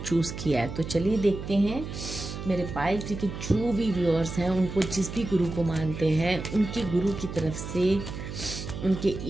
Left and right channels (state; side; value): noise; right; hum, 8 dB below the sound